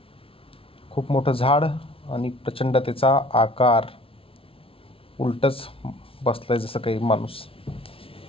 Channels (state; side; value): late; right; 0.26 ms